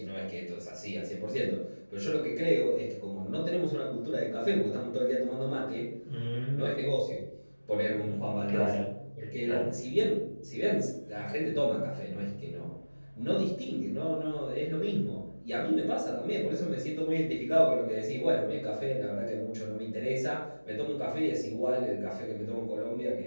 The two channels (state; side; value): inverted; both; correlation -1.00